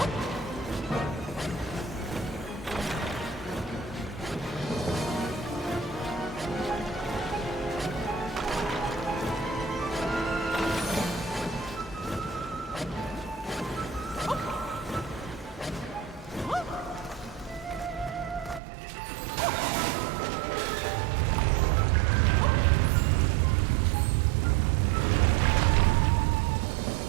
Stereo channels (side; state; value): left; drops out; at 18.6 s